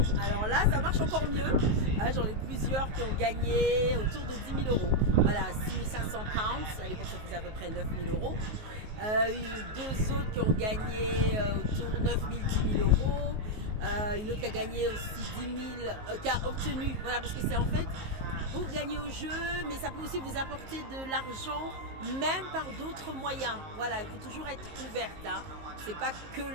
alors là, ça marche encore mieux. J'en ai plusieurs qui ont gagné autour de 10 000 euros. Voilà, 6 500 pounds. À l'époque, ça faisait à peu près 9 000 euros. Deux autres qui ont gagné autour de 9 000, 10 000 euros. Une autre qui a gagné aussi 10 000, qui a obtenu. Voilà, parce que c'est en fait pour gagner au jeu, mais ça peut aussi vous apporter de l'argent, même par d'autres moyens. Voilà, il faut toujours être ouverte. C'est pas que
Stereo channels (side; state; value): left; late; 19 ms